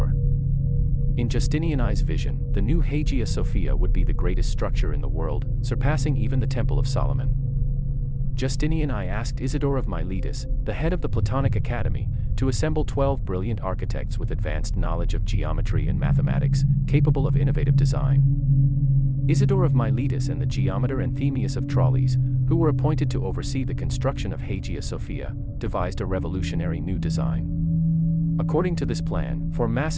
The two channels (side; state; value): both; identical; correlation 1.00